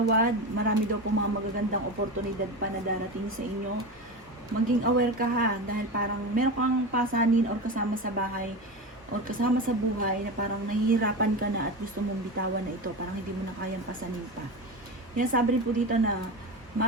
Marami daw po mga magagandang oportunidad pa na darating sa inyo. Maging aware ka ha, dahil parang meron kang pasanin or kasama sa bahay or kasama sa buhay na parang nahihirapan ka na at gusto mong bitawan na ito, parang hindi mo na kayang pasanin pa. Yan sabi rin po dito na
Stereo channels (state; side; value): normal; both; correlation 0.23